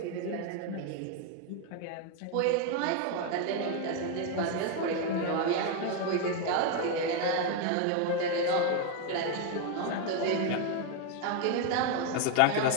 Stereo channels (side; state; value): both; different; correlation 0.01